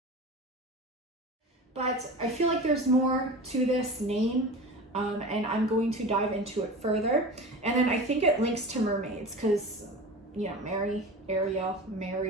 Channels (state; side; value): normal; both; correlation 0.33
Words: But I feel like there's more to this name, and I'm going to dive into it further. And then I think it links to mermaids because, you know, Mary, Ariel,